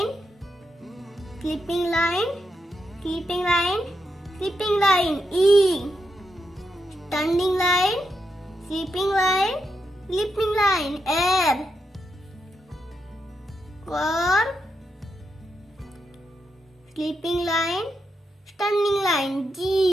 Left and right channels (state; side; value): normal; both; correlation 0.84